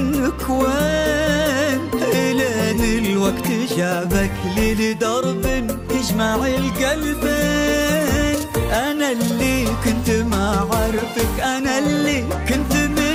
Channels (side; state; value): both; identical; correlation 1.00